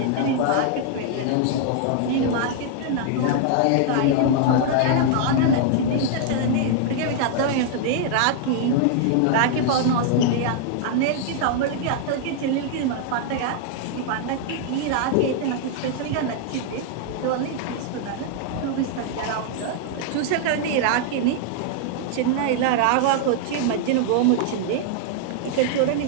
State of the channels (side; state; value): both; different; correlation 0.00